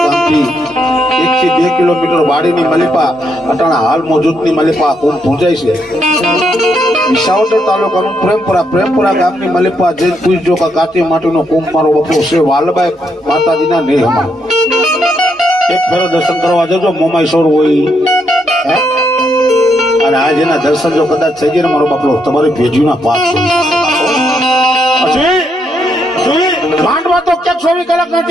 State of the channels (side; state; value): both; normal; correlation 0.77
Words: ગામથી 1 થી 2 કિલોમીટર વાડીની મલિપા અટાણા હાલ મોજૂદની મલિપા કુંભ પૂજાય છે વિસાવદર તાલુકાનું પ્રેમપરા ગામની મલિપા જે પૂજજો કે કાચી માટીનો કુંભ મારો બાપલો છે વાલબાઈ માતાજીના નેહમાં એક ફેરો દર્શન કરવા જજો મોમાઈ સોર હોય હે અને આ જેના દર્શન જો કદાચ થઈ ગયા ને મારો બાપલો તમારી ભેજીના પાપ પછી માંડવા તો ક્યાંક 24 કલાક